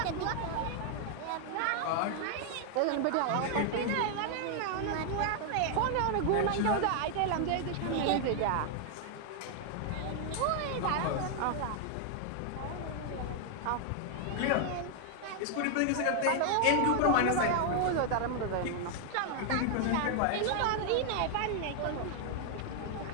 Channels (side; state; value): both; different; correlation 0.00